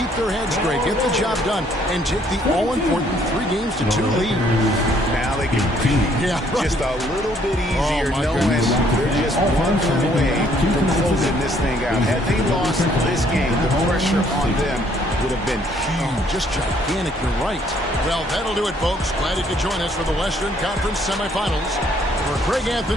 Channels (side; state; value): both; normal; correlation 0.65